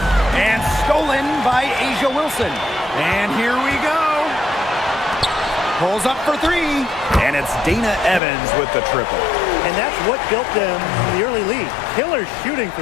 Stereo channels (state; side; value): drops out; right; at 8.2 s